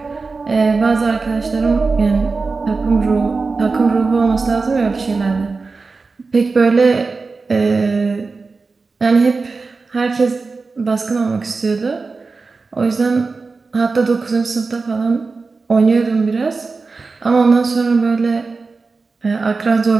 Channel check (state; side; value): quieter; left; 4.2 dB